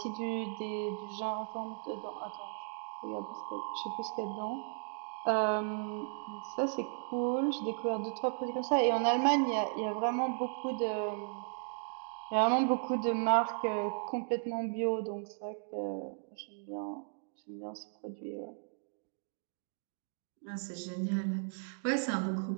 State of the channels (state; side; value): silent; left; digital silence